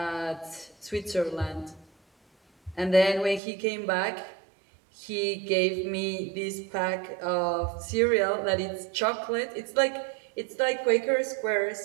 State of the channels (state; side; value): drops out; left; at 3.4 s